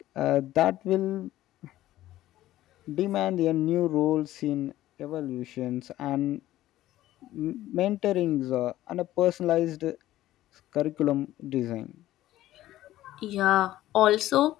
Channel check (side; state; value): right; quieter; 14.7 dB